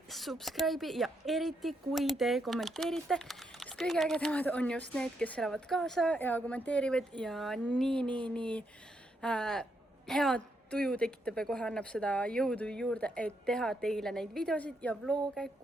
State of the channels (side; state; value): both; normal; correlation 0.79